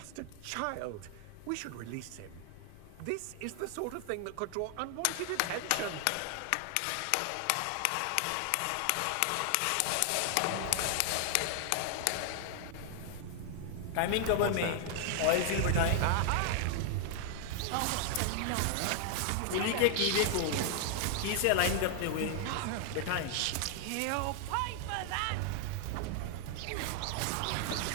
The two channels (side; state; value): both; different; correlation 0.00